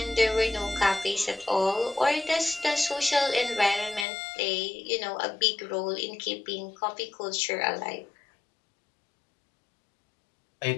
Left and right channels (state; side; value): drops out; right; at 4.0 s